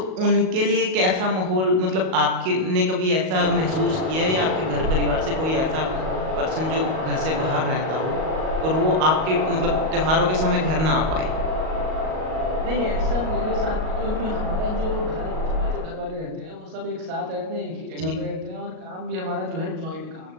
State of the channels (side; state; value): left; late; 38 ms